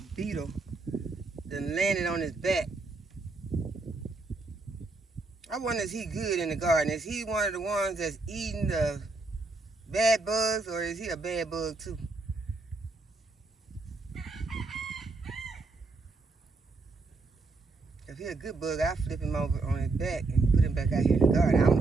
beetle that landed on his back. I wonder, is he good in the garden? Is he one of the ones that's eating the bad bugs, or is he a bad bug too? If he's a good bug, I'll flip him over on his back and put him back out here in the garden. I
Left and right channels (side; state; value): left; quieter; 3.6 dB